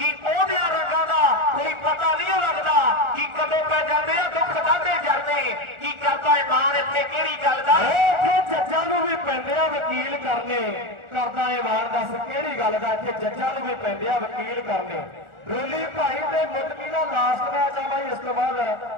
ਉਹਦਿਆਂ ਰੰਗਾਂ ਦਾ ਕੋਈ ਪਤਾ ਨਹੀਂ ਲੱਗਦਾ, ਕਿ ਕਦੋਂ ਪੈ ਜਾਂਦੇ ਆ ਦੁੱਖ ਦਾਦੇ ਜਰਦੇ, ਕੀ ਕਰਦਾ ਇਮਾਨ ਇੱਥੇ ਕਿਹੜੀ ਗੱਲ ਦਾ। जज्जां नूं भी पैंदे आ वकील करने करदा ए वार दस किहड़ी गल दा इत्थे जज्जां नूं भी पैंदे आ वकील करने रोली भाई ते मुदकी दा लास्ट मैच आ भाई इस तो बाद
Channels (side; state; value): left; late; 1.4 ms